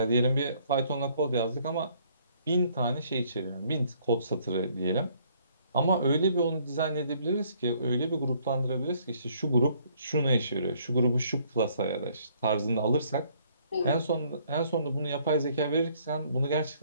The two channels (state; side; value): inverted; both; correlation -0.64